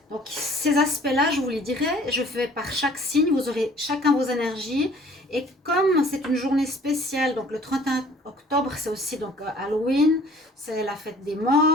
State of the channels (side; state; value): both; normal; correlation 0.53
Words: Donc ces aspects-là, je vous les dirai, je fais par chaque signe, vous aurez chacun vos énergies. Et comme c'est une journée spéciale, donc le 31 octobre, c'est aussi donc Halloween, c'est la fête des